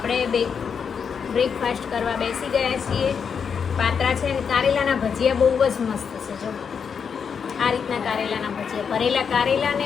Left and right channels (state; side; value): quieter; right; 6.6 dB